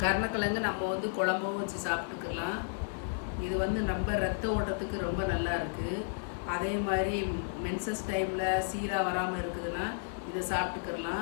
கருணக்கிழங்கு நம்ம குழம்பும் வச்சு சாப்பிட்டுக்கலாம். இது நம்ம ரத்த ஓட்டத்துக்கு ரொம்ப நல்லா இருக்குது. அதே மாதிரி மென்சஸ் டைமில் சீராக வராமல் இருக்குதுன்னா இதை சாப்பிட்டுக்கிறலாம்,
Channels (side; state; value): right; silent; 56 dB below the other